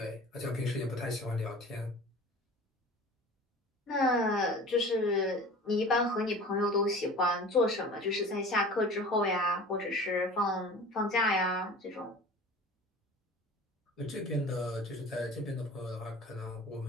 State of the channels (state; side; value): normal; both; correlation 0.40